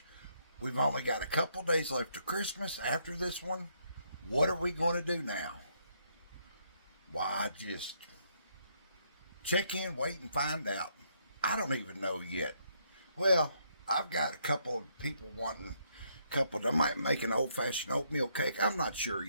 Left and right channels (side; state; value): both; inverted; correlation -0.72